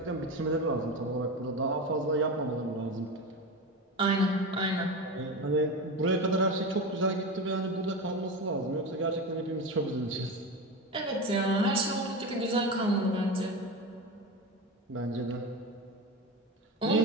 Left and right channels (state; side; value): normal; both; correlation 0.23